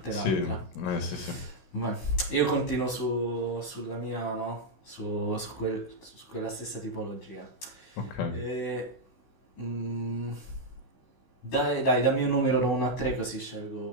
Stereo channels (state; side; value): late; right; 16 ms